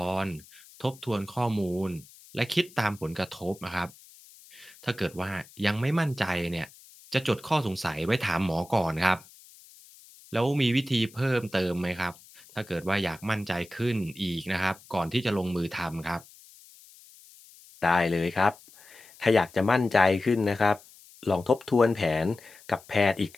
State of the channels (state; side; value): noise; left; hiss, 23 dB below the sound